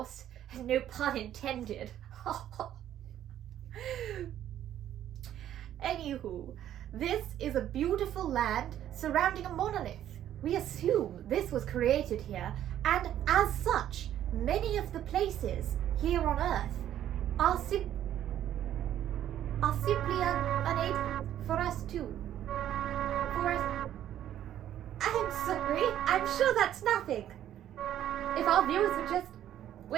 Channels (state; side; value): quieter; left; 11.4 dB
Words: No pun intended. Anywho, this is a beautiful land surrounding a monolith. We assume this was created here, and as such, many of the places here on Earth are simply unable for us to. I'm sorry, I'm sure that's nothing. If our viewers would just